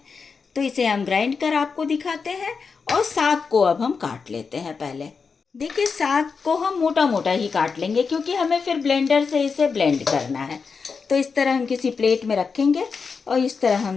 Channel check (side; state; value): right; quieter; 5.3 dB